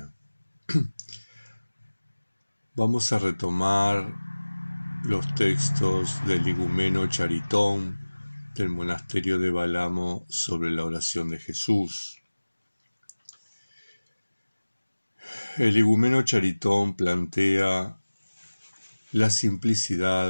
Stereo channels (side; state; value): both; inverted; correlation -1.00